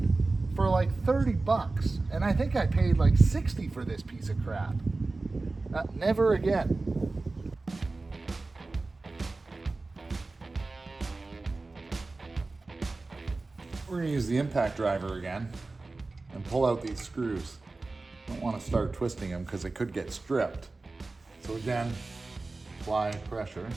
for like 30 bucks. And I think I paid like 60 for this piece of crap. Never again. We're gonna use the impact driver again and pull out these screws. Don't want to start twisting them because they could get stripped. So again, apply pressure.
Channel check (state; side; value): quieter; left; 3.4 dB